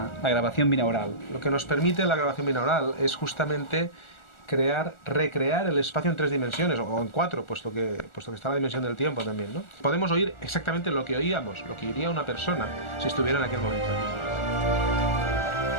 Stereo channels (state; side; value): late; right; 1.4 ms